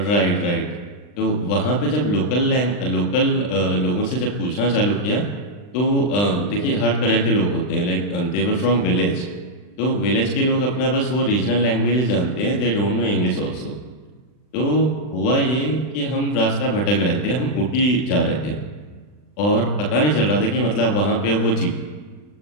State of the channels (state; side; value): late; right; 39 ms